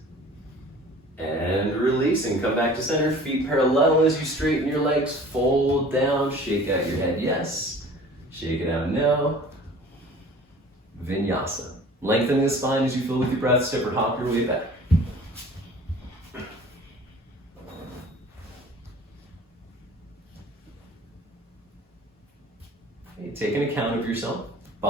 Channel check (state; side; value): normal; both; correlation 0.46